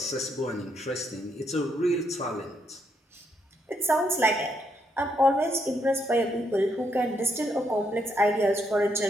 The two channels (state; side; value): normal; both; correlation 0.76